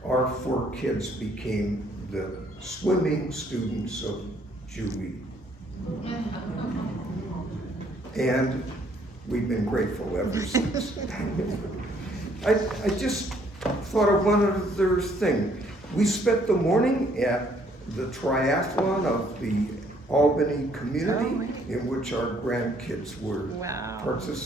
our 4 kids became the swimming students of Julie. And we've been grateful ever since. I just thought of one other thing. We spent the morning at the triathlon of the Albany community, in which our grandkids were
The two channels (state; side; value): normal; both; correlation 0.65